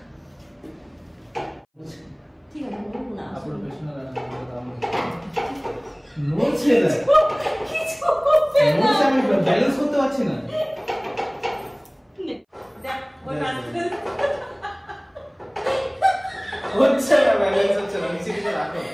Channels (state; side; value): identical; both; correlation 1.00